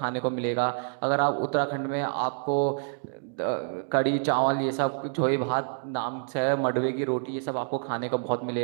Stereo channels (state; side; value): silent; left; digital silence